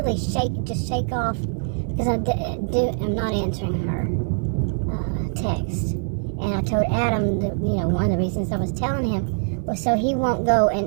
shake off, because I'm not answering her text. And I told Adam that, one of the reasons I was telling him was so he won't go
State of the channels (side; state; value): left; silent; 63 dB below the other